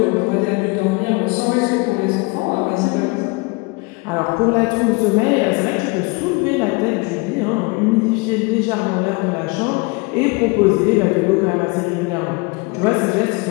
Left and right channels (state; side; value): quieter; right; 27.5 dB